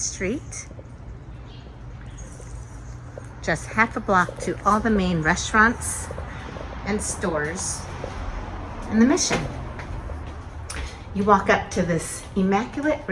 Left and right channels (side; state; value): both; identical; correlation 1.00